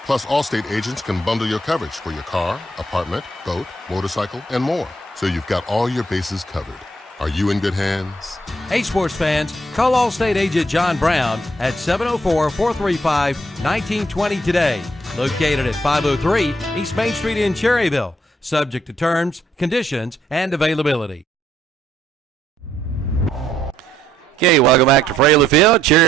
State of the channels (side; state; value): both; normal; correlation 0.71